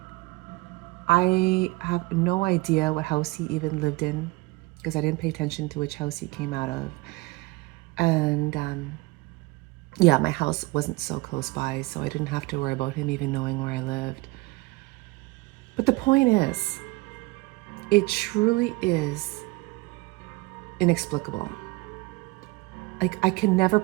I have no idea what house he even lived in because I didn't pay attention to which house he came out of. And yeah, my house wasn't so close by, so I didn't have to worry about him even knowing where I lived. But the point is, it truly is inexplicable. Like, I can never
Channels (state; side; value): quieter; left; 22.5 dB